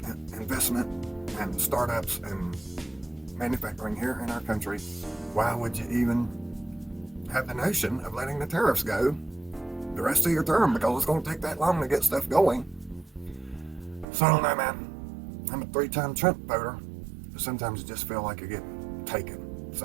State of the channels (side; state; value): left; drops out; at 14.1 s